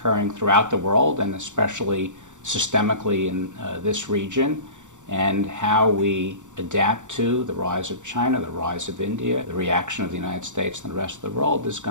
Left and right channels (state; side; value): late; left; 0.85 ms